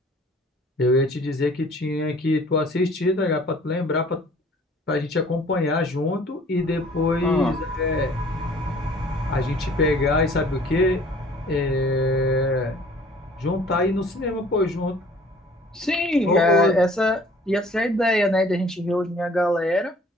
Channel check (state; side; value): normal; both; correlation 0.52